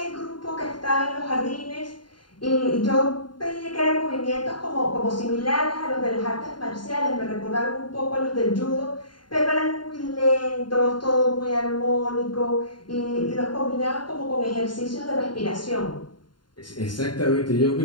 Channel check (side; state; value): right; late; 0.71 ms